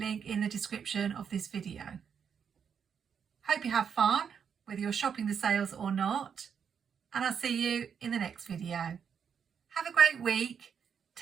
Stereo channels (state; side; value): quieter; left; 7.3 dB